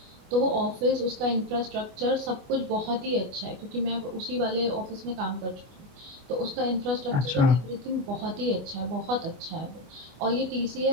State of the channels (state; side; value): late; left; 25 ms